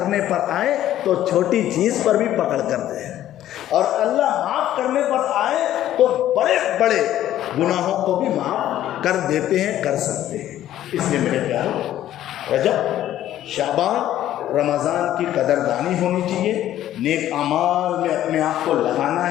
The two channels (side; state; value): right; quieter; 12.6 dB